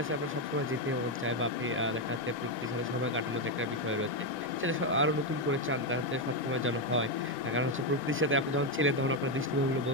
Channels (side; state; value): both; normal; correlation 0.05